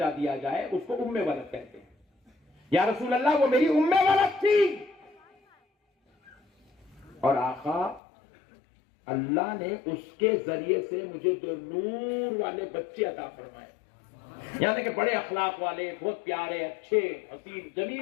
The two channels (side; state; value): right; drops out; at 8.0 s